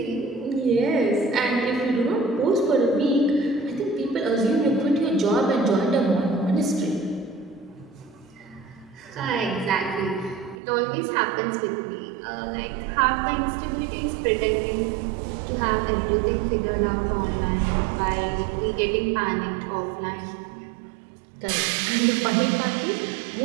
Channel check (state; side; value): drops out; left; at 10.6 s